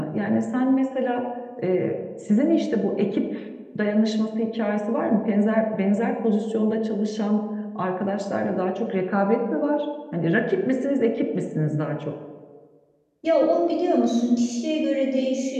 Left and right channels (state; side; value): identical; both; correlation 1.00